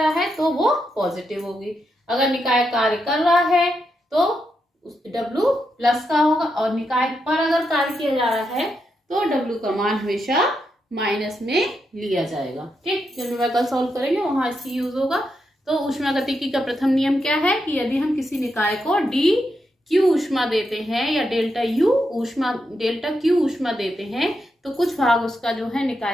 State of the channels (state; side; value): normal; both; correlation 0.83